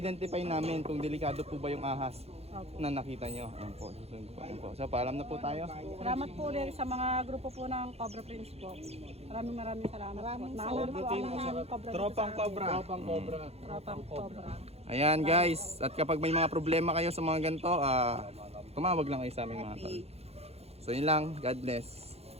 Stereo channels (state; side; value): late; left; 0.30 ms